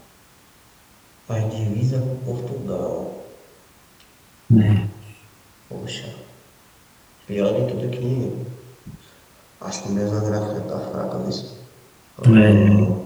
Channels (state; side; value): identical; both; correlation 1.00